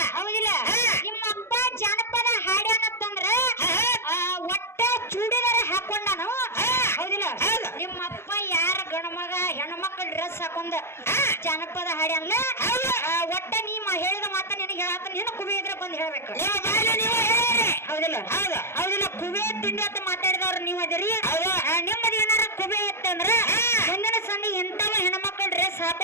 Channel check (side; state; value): right; late; 0.12 ms